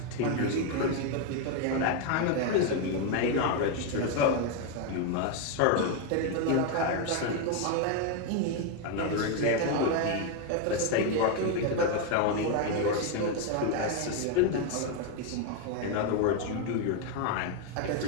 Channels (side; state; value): both; different; correlation 0.01